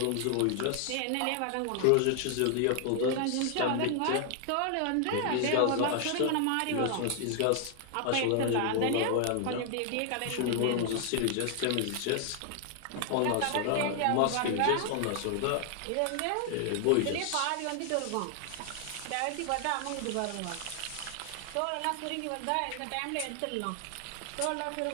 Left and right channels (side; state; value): both; different; correlation 0.00